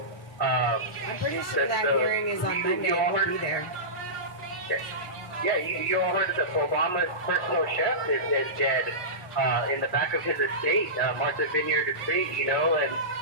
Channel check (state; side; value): normal; both; correlation -0.18